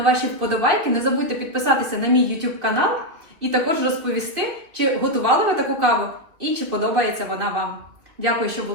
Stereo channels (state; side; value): late; left; 2.9 ms